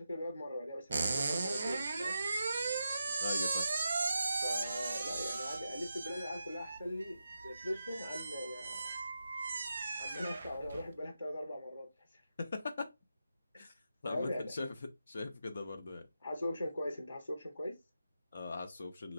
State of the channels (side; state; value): both; inverted; correlation -0.88